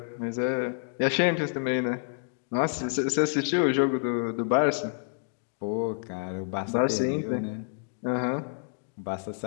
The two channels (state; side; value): silent; right; digital silence